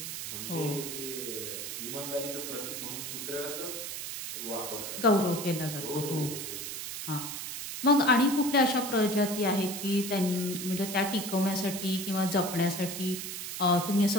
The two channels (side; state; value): right; noise; hiss, 6 dB below the sound